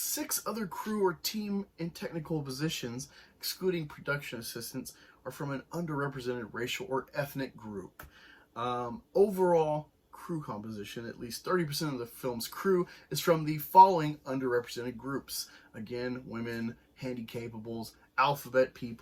6 other crew or team and technical positions, excluding production assistants, are from an underrepresented racial or ethnic group. Overall crew composition, at least 30% of the film's crew is from the following underrepresented groups. Again, women, handicapables, alphabet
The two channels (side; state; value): both; identical; correlation 1.00